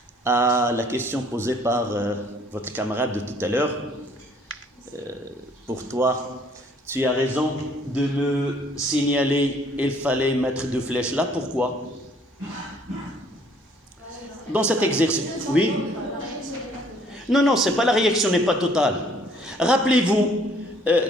à la question posée par votre camarade de tout à l'heure. Pour toi, tu as raison de me signaler, il fallait mettre deux flèches là. Pourquoi? Dans cet exercice, oui. Non, c'est pas la réaction n'est pas totale. Rappelez-vous,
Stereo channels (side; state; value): both; normal; correlation 0.61